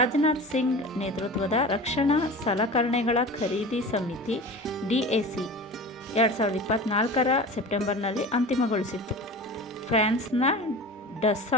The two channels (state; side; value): normal; both; correlation 0.34